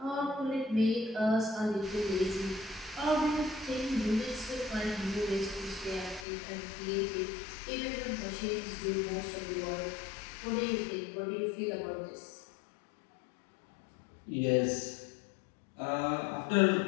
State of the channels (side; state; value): right; drops out; at 6.2 s